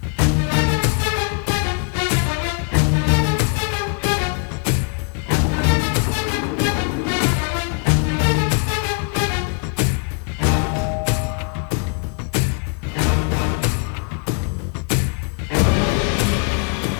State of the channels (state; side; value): quieter; right; 39.0 dB